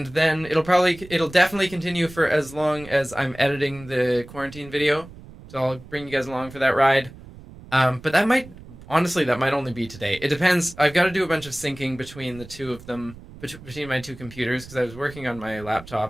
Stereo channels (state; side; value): noise; right; rumble, 18 dB below the sound